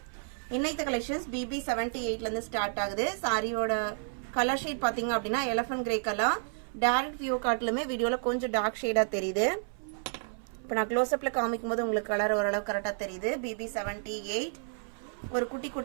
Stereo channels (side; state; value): left; silent; 57 dB below the other